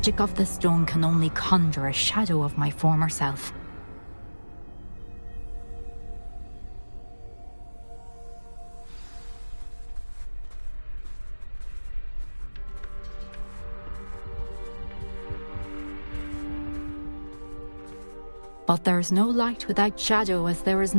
of the stone can only conjure a shadow of my former self. But there is no light without shadow, as there is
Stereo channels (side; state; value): both; inverted; correlation -1.00